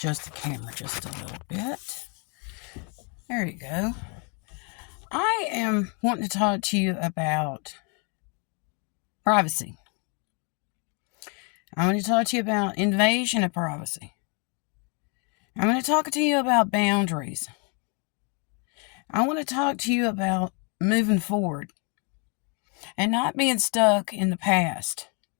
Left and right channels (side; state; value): right; quieter; 35.7 dB